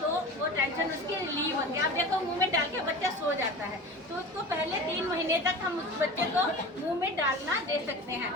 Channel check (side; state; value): both; normal; correlation 0.34